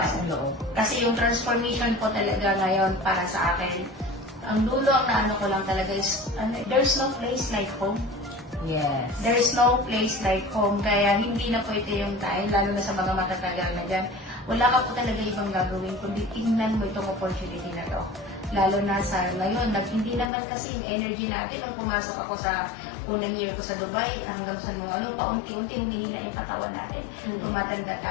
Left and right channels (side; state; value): right; drops out; at 20.3 s